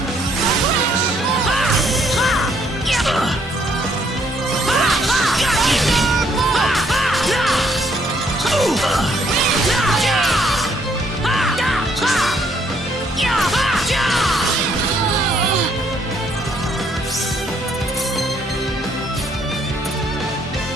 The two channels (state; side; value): normal; both; correlation 0.68